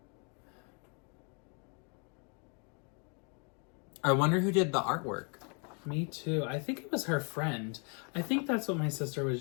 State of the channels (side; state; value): right; quieter; 37.1 dB